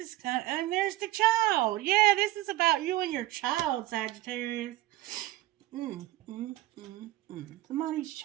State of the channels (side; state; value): left; quieter; 16.3 dB